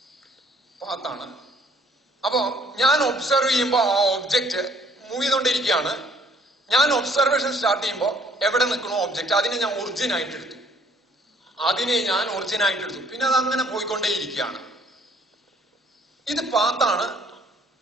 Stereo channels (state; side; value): normal; both; correlation 0.61